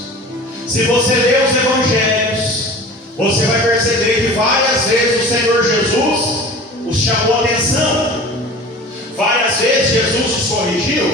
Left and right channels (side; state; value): both; normal; correlation 0.39